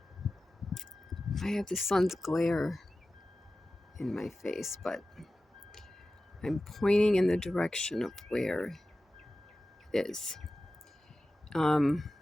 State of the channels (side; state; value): both; normal; correlation 0.95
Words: I have the sun's glare in my face, but I'm pointing in the direction of where it is.